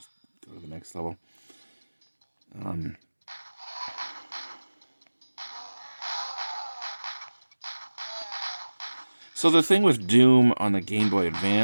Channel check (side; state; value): both; inverted; correlation -1.00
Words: go to the next level. So the thing with Doom on the Game Boy